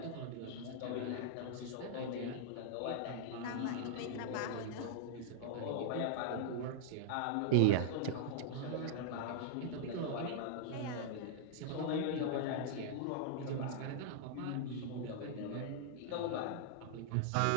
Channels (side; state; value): both; different; correlation -0.01